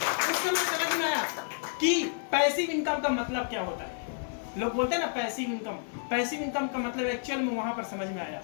समझ में आया कि पैसिव इनकम का मतलब क्या होता है। लोग बोलते हैं ना पैसिव इनकम का मतलब एक्चुअल में वहां पर समझ में आया,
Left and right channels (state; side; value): silent; right; 58 dB below the other